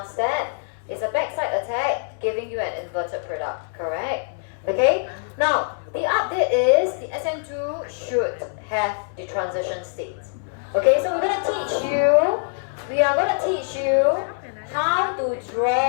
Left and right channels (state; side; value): silent; right; digital silence